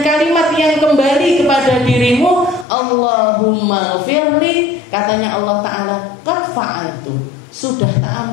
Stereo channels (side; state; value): right; drops out; at 2.7 s